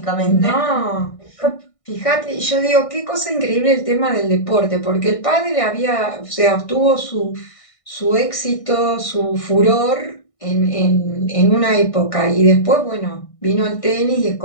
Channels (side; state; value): right; late; 1.6 ms